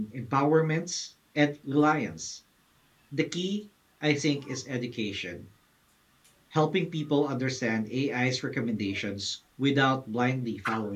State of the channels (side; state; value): both; identical; correlation 1.00